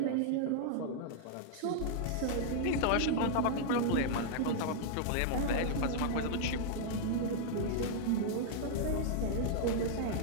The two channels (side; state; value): both; different; correlation -0.01